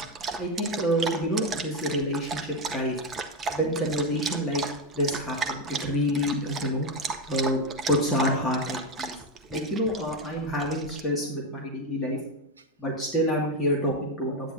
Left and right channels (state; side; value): normal; both; correlation 0.09